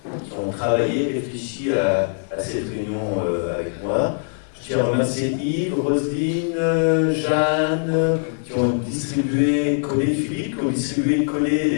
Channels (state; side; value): silent; right; 59 dB below the other